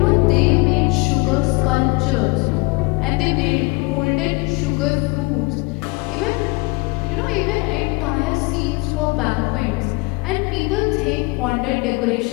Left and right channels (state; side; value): quieter; right; 27.0 dB